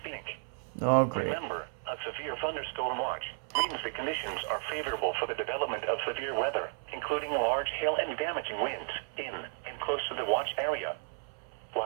Oh, great. Remember, a severe thunderstorm watch means the conditions are favorable for the development of severe weather, including large hail and damaging winds in and close to the watch area.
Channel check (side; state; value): left; silent; 56 dB below the other